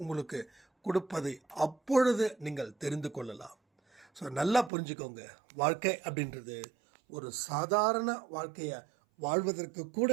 உங்களுக்கு கொடுப்பதை அப்பொழுது நீங்கள் தெரிந்து கொள்ளலாம். ஸோ நல்லா புரிஞ்சுக்கோங்க, வாழ்க்கை அப்படின்றது ஒரு சாதாரண வாழ்க்கையை வாழ்வதற்கு கூட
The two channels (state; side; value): drops out; left; at 4.7 s